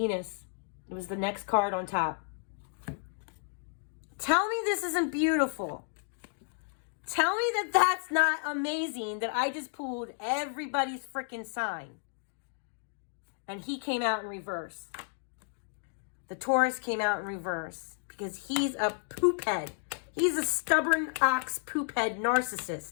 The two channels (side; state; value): right; silent; 56 dB below the other